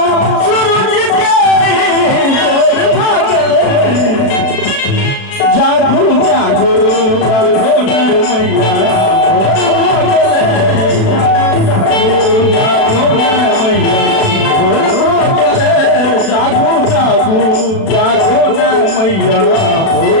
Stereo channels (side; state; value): right; late; 36 ms